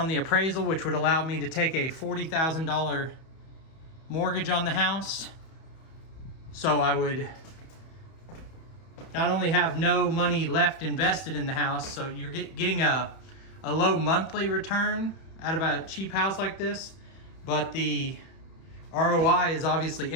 the appraisal, which would allow me to take a $40,000 mortgage on the house. So I would not only have no money left invested in the house, so you're getting a low monthly return out of a cheap house like this, but the ROI is obviously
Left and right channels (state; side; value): late; right; 31 ms